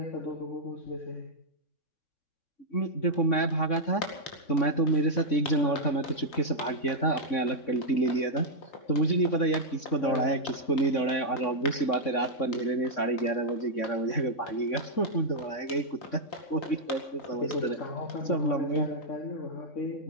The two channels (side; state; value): right; late; 3.6 ms